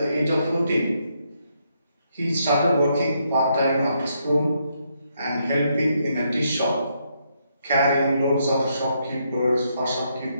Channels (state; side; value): inverted; both; correlation -0.76